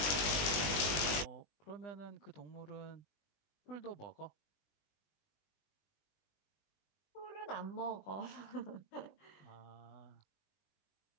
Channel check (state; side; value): late; right; 20 ms